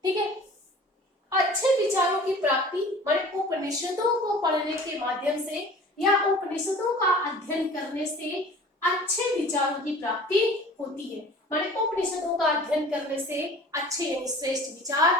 ठीक है। अच्छे विचारों की प्राप्ति माने उपनिषदों को पढ़ने के माध्यम से या उपनिषदों का अध्ययन करने से अच्छे विचारों की प्राप्ति होती है। माने उपनिषदों का अध्ययन करने से अच्छे यानी श्रेष्ठ विचार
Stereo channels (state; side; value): normal; both; correlation 0.44